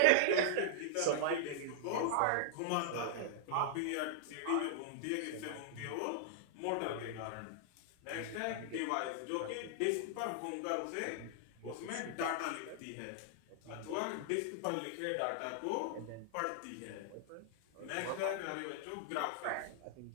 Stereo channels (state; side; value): different; both; correlation -0.01